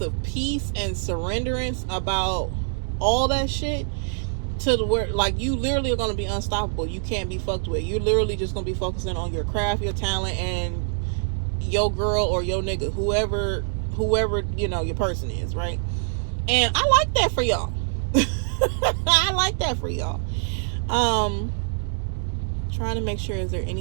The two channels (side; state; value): left; silent; digital silence